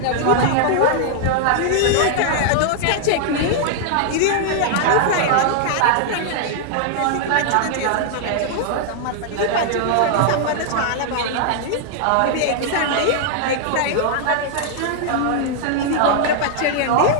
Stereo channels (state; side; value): different; both; correlation -0.01